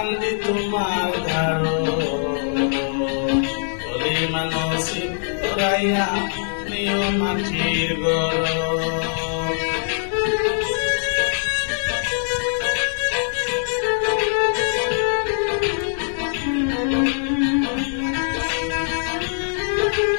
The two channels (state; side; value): silent; right; 64 dB below the other